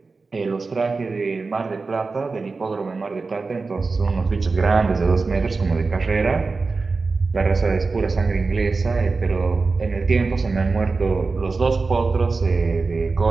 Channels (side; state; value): left; quieter; 4.1 dB